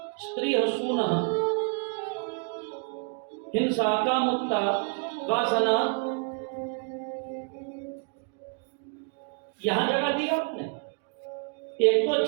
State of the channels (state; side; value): quieter; left; 38.3 dB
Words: स्त्री हसूना, हिंसा, कामुकता, वासना, यहां जगह दी आपने, एक तो